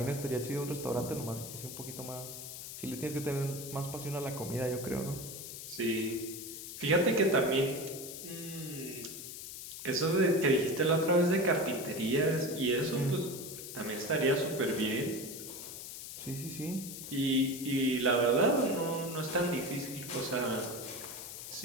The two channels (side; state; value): left; noise; hiss, 10 dB below the sound